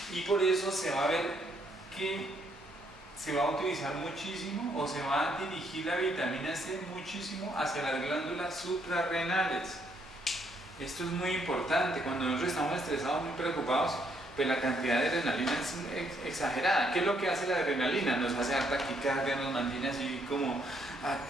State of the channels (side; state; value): both; normal; correlation 0.71